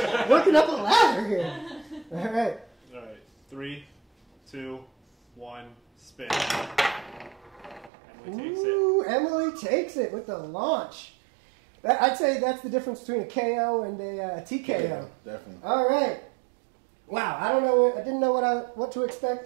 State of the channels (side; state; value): left; drops out; at 7.9 s